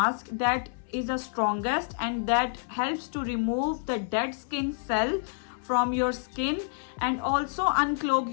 that is the strongest and that helps to remove the dead skin cell from your skin and also unclog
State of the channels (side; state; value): right; silent; 59 dB below the other